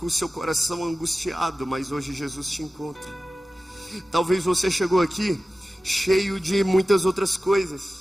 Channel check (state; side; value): normal; both; correlation 0.96